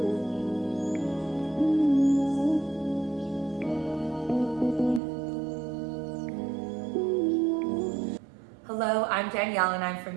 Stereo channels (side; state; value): left; drops out; at 5.0 s